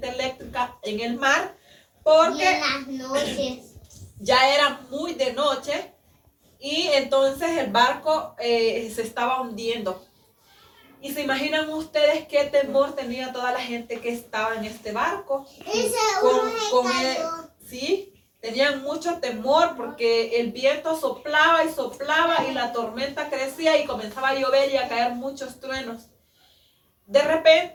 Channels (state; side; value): identical; both; correlation 1.00